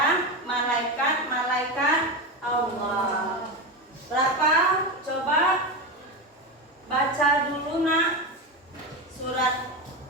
malaikat-malaikat Allah. Berapa? Coba baca dulu nak surat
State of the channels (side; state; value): both; normal; correlation 0.18